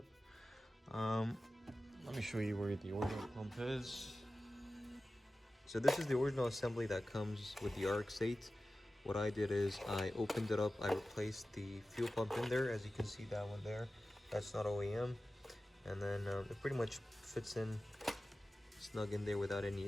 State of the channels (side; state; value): both; normal; correlation 0.95